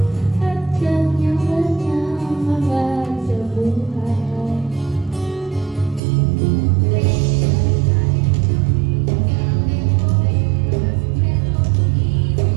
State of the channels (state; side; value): drops out; left; at 6.0 s